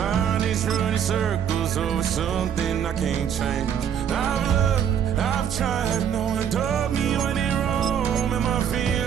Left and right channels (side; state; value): left; quieter; 8.7 dB